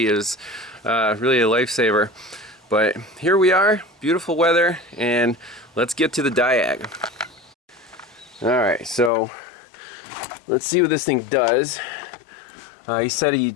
It was really a lifesaver. But here we are, beautiful weather, and let's get to the diag. Alright, so let's see what this thing does. He said he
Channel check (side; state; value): right; drops out; at 9.1 s